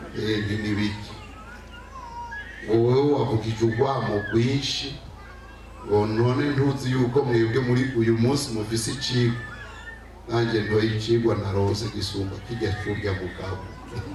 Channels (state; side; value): identical; both; correlation 1.00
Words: N'ibiki wowe wavugije urwamo rwinshi, ngo none ntuzi yuko mwebwe muri uyu munsi mufise icigwa. nanjye ntoye icigwa narose gisumba kijya kurya mugabo.